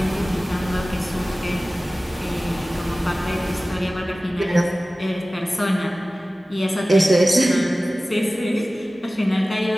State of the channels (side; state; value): both; normal; correlation 0.97